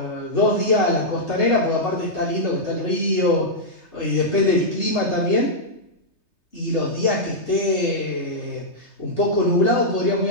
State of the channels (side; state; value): right; late; 3.3 ms